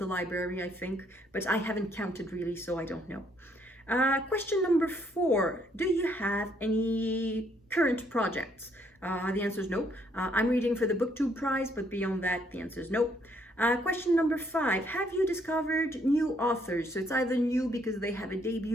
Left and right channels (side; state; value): both; normal; correlation 0.69